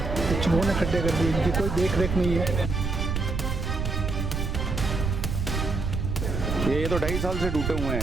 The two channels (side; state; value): right; noise; rumble, 2 dB below the sound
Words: चूहों ने खड्डे कर दिए, इनकी कोई देख रेख नहीं है। ये तो 2.5 साल से टूटे हुए